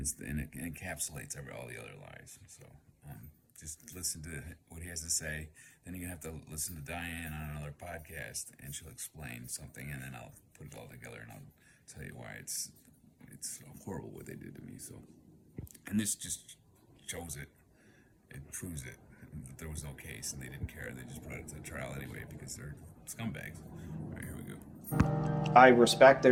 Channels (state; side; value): identical; both; correlation 1.00